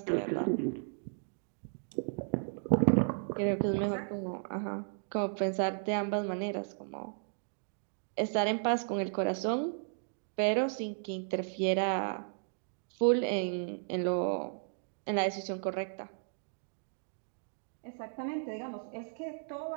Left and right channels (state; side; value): silent; left; digital silence